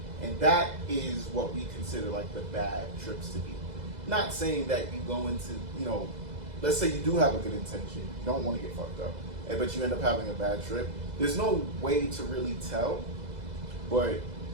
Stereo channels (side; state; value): left; late; 2.0 ms